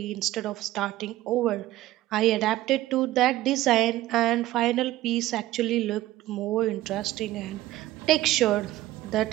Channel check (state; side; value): quieter; left; 15.7 dB